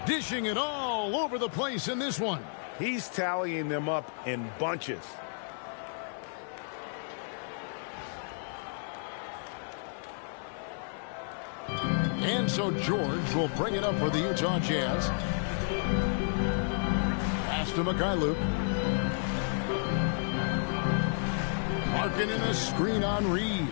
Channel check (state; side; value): silent; right; 57 dB below the other